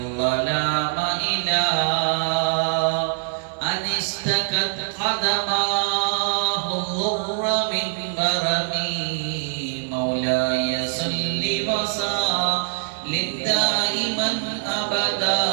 إلى أن اشتكت قدماه الضر من برمي. مولاي صل وسلم دائما أبدا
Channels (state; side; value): silent; left; 60 dB below the other